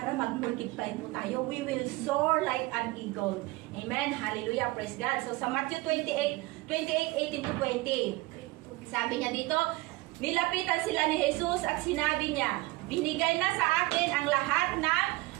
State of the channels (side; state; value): left; quieter; 21.5 dB